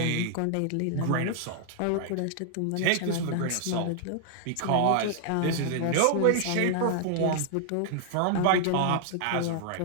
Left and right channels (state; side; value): different; both; correlation 0.00